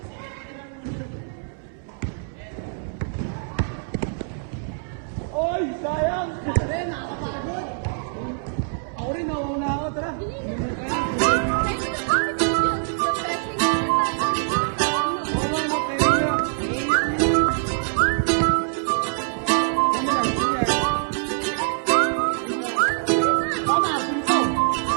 Oy, sayang! Pare, nakakapagod! Ako rin, nawauna ako. Tara, lumot tayo. Tayo mo ng coffee ko yun. Refreshing na yung pasalit sa taon, no? Oo nga, napahinga nga. Nahinga kami na. Kami last year. Tama, simpo!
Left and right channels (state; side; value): silent; left; 63 dB below the other